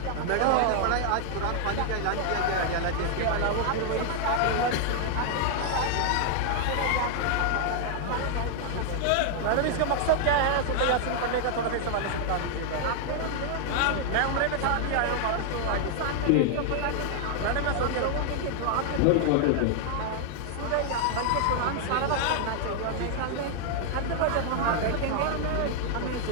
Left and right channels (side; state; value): both; different; correlation 0.00